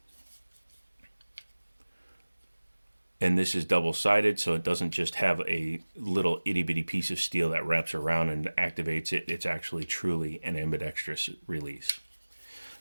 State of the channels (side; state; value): both; inverted; correlation -1.00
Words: And this is double-sided, so it doesn't just have a little itty-bitty piece of steel that wraps around and activates it. It's actually truly an ambidextrous release.